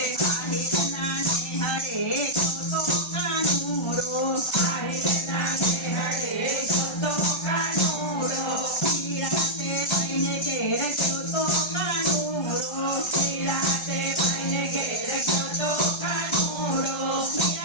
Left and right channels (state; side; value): late; right; 1.3 ms